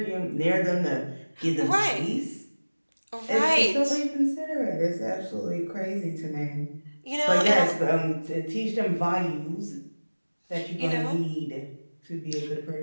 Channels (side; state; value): both; inverted; correlation -1.00